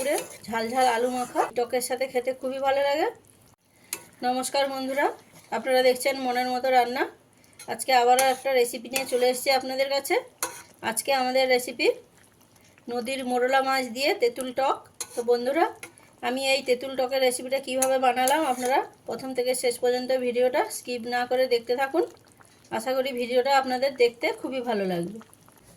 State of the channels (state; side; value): identical; both; correlation 1.00